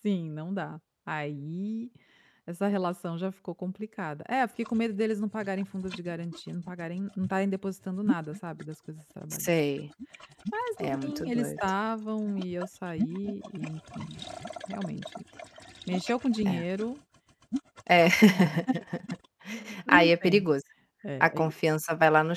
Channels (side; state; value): both; identical; correlation 1.00